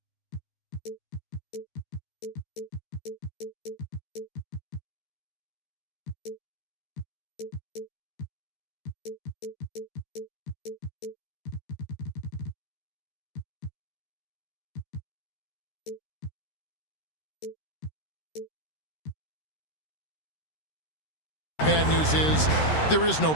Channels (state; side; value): late; right; 13 ms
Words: bad news is there is no